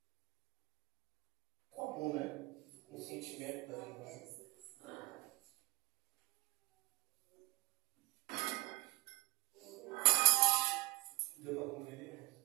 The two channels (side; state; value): left; quieter; 22.2 dB